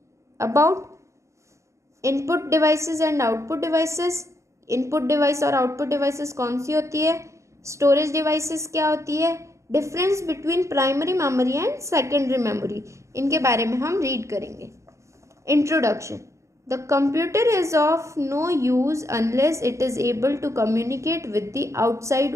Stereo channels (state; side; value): late; left; 0.14 ms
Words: About input devices and output devices. Input device और आउटपुट डिवाइसेस कौन सी होती है? स्टोरेज डिवाइसेस क्या होती है? Difference between primary memory and secondary memory, इनके बारे में हम रीड करेंगे. Introduction. The computer is of no use unless it is able to communicate with the